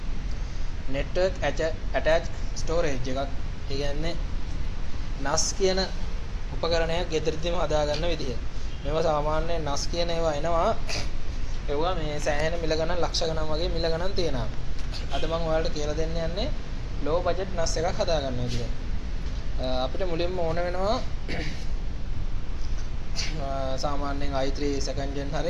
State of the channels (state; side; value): identical; both; correlation 1.00